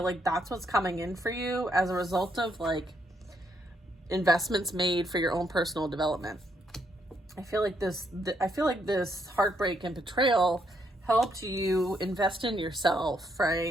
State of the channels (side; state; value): both; normal; correlation 0.74